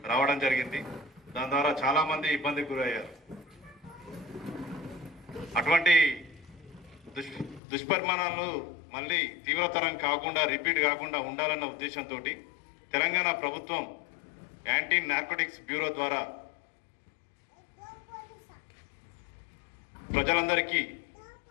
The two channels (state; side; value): drops out; right; at 7.6 s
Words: రావడం జరిగింది. దాని ద్వారా చాలా మంది ఇబ్బందికి గురయ్యారు. అటువంటి దుష్పరిమాణాలు మళ్ళీ తీవ్రతరం కాకుండా రిపీట్ కాకుండా ఉండాలన్న ఉద్దేశంతో తెలంగాణ ప్రభుత్వం యాంటీ నార్కోటిక్స్ బ్యూరో ద్వారా ప్రజలందరికీ